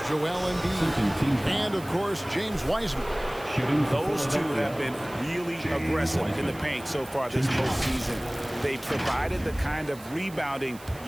Joel Embiid, and of course James Wiseman. Those two have been really aggressive in the paint so far this postseason. They provided the kind of rebounding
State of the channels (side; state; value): right; noise; hiss, 20 dB below the sound